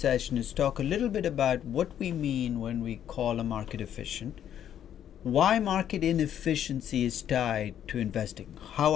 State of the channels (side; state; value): right; quieter; 10.1 dB